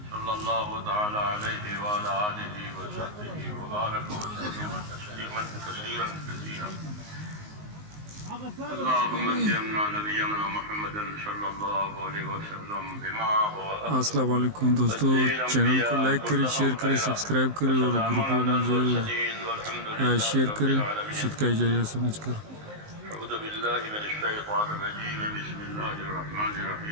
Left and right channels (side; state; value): left; late; 19 ms